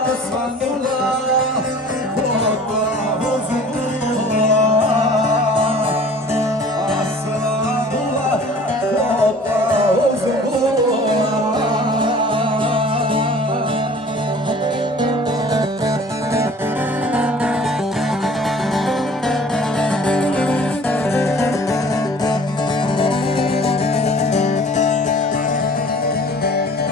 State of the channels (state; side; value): normal; both; correlation 0.48